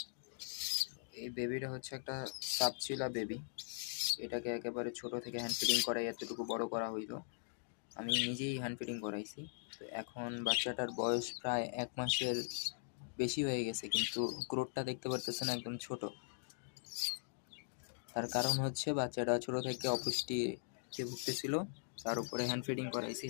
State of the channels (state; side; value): silent; right; digital silence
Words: এই বেবিটা হচ্ছে একটা সাপচিলা বেবি। এটাকে একেবারে ছোট থেকে হ্যান্ড ফিডিং করাই এতটুকু বড় করা হইলো। আমি নিজেই হ্যান্ড ফিডিং করাইছি। তো এখন বাচ্চাটার বয়স প্রায় ১ মাসের বেশি হয়ে গেছে, কিন্তু গ্রোথটা দেখতে পারতেছেন একদম ছোট। তার কারণ হচ্ছে বাচ্চাটা ছোট থেকে অপুষ্টিতে ভুগতেছিল। তার উপরে হ্যান্ড ফিডিং করাইছি।